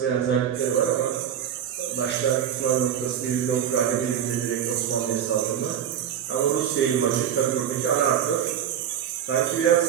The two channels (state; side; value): quieter; left; 9.2 dB